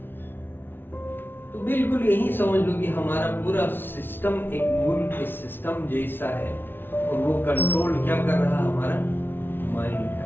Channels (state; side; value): late; right; 0.10 ms